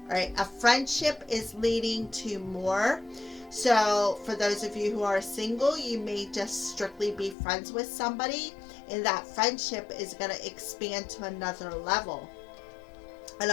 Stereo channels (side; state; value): right; drops out; at 7.4 s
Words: All right, a friendship is leading to more. So for those of you who are single, you may just strictly be friends with somebody, and that friendship is going to expand to another level. An